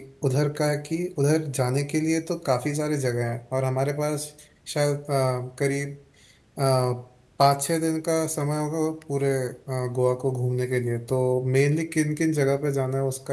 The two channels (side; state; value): both; identical; correlation 1.00